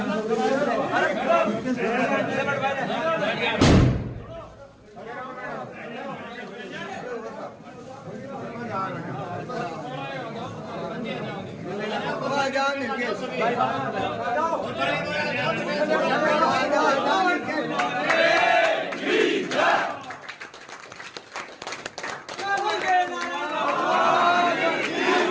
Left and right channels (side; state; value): both; identical; correlation 1.00